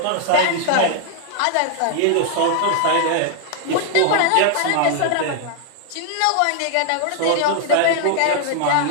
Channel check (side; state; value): both; different; correlation 0.00